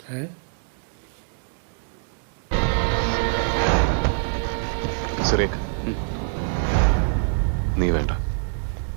है സുരേഖ് നീ വേണ്ട.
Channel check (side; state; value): left; silent; 62 dB below the other